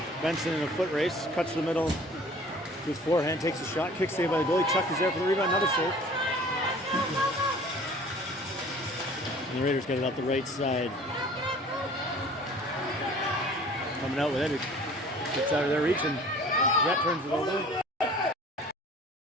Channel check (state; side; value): normal; both; correlation 0.49